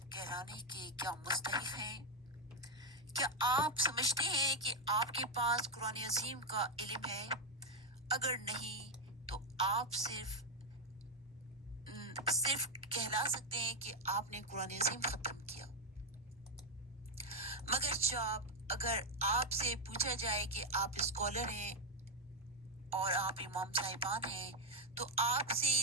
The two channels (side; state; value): both; normal; correlation 0.04